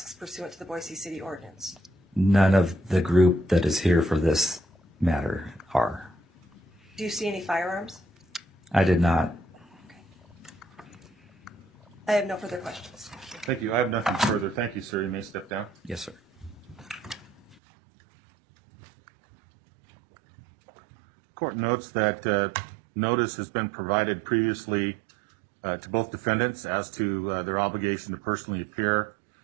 pursuant to the Boise City ordinance? None of the group that is here for this matter are. Do you see any firearms? I did not. Okay. I have no further questions. Thank you. I have nothing further. Thank you, sir. You may step down. Yes, sir. Court notes that notice has been provided previously to both defendants as to their obligation to personally appear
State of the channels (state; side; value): drops out; left; at 17.6 s